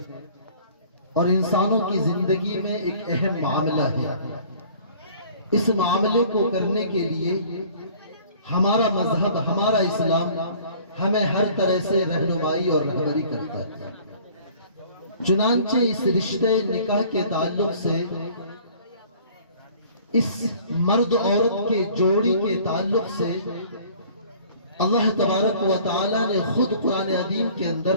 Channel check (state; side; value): inverted; both; correlation -0.52